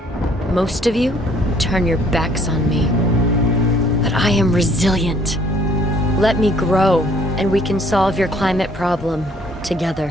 most of you turn your backs on me. But I am resilient. Let me grow, and we can solve your climate problem together.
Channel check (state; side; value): normal; both; correlation 0.60